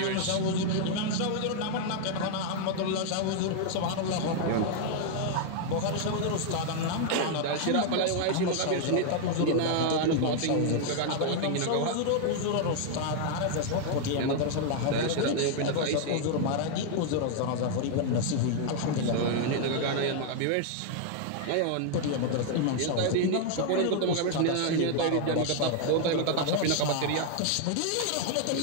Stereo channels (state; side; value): different; both; correlation 0.00